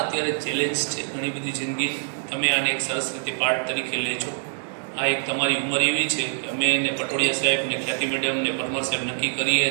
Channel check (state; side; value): silent; left; digital silence